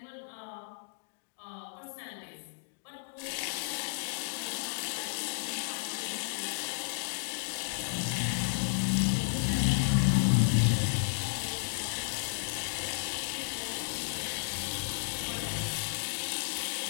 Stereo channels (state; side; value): silent; right; digital silence